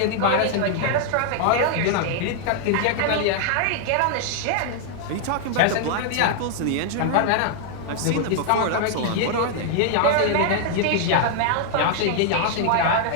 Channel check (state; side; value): different; both; correlation 0.00